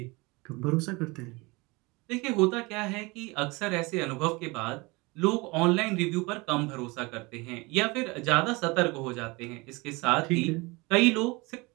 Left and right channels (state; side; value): quieter; left; 25.0 dB